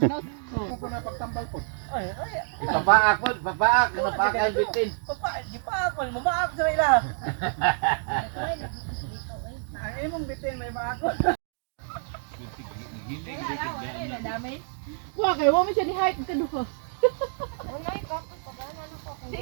Papaak po, papaak. Napaak ang bitin. Gipaakon, mamaak sa ila. Ang imong bitin may maakon. Wa kay wa mi siya ni hike kaduha.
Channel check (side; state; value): left; silent; digital silence